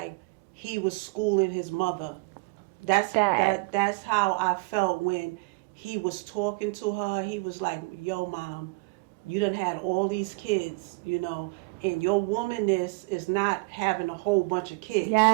he was schooling his mother. That's how I felt when he was talking to her. He was like, yo, Mom, you done had all these kids, you know, and your womanness is not having a whole bunch of kids. You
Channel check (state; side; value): quieter; left; 27.8 dB